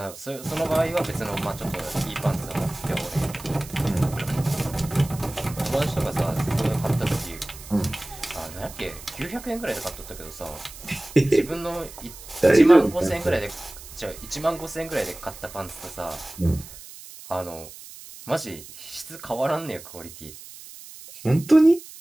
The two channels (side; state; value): right; noise; hiss, 16 dB below the sound